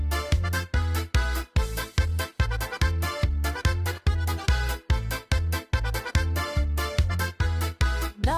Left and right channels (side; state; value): both; identical; correlation 1.00